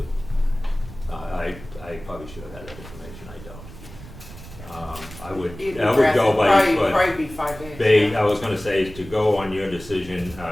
I probably should have had that information. I don't. I would It'd go by, Probably be 5 days. They, yeah. I was gonna say, to go on your decision,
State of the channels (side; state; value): right; noise; rumble, 16 dB below the sound